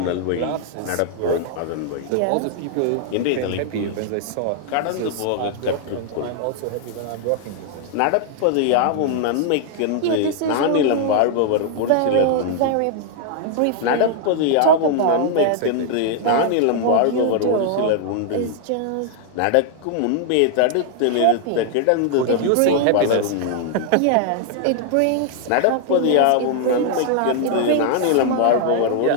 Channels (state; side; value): different; both; correlation 0.00